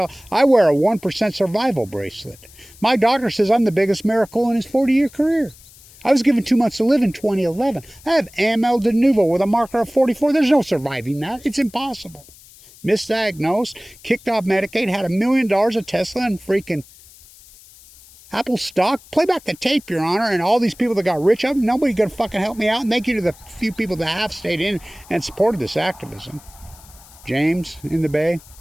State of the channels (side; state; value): left; noise; hiss, 23 dB below the sound